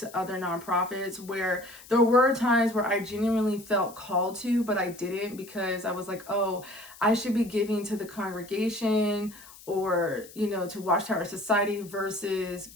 other nonprofits, where there were times where I genuinely felt called to, but I didn't, because I was like, oh, I should be giving to the congregation or, you know, to Watchtower Society versus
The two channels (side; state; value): left; noise; hiss, 20 dB below the sound